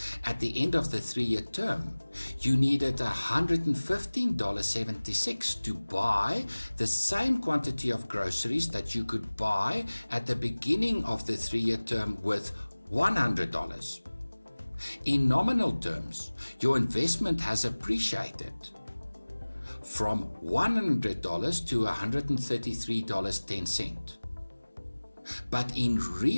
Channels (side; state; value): both; inverted; correlation -1.00